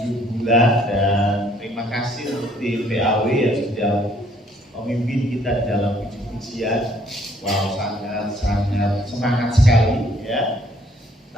bulan, dan terima kasih untuk tim PAW yang sudah memimpin kita dalam puji-pujian. Wow, sangat semangat sekali, ya.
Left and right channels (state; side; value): normal; both; correlation 0.63